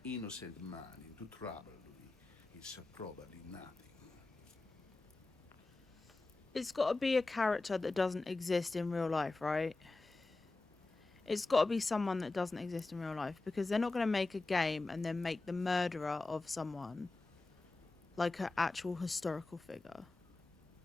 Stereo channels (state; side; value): quieter; right; 3.3 dB